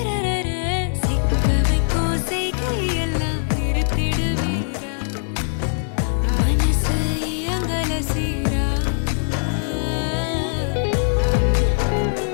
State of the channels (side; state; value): right; silent; digital silence